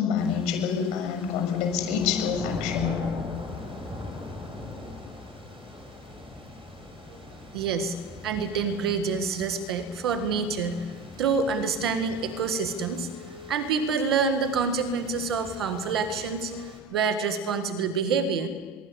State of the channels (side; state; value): both; normal; correlation 0.31